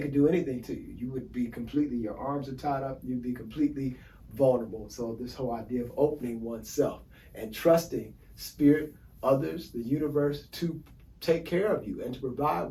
could do anything to you. You would be completely, your arms are tied up, you'd be completely vulnerable. So this whole idea of opening oneself and trusting spirit, others, the universe to take care of you and to provide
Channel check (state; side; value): identical; both; correlation 1.00